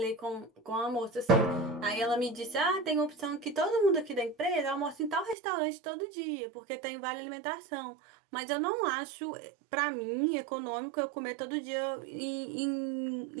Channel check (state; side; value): drops out; left; at 5.4 s